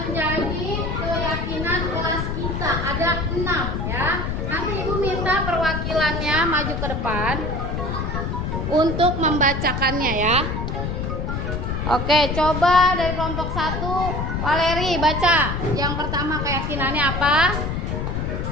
keyakinan kelas kita. Ada 6 ya. Nanti Ibu minta perwakilannya maju ke depan untuk membacakannya ya. Oke, coba dari kelompok 1, Valeri baca. Yang pertama keyakinannya apa?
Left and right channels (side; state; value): left; noise; rumble, 2 dB below the sound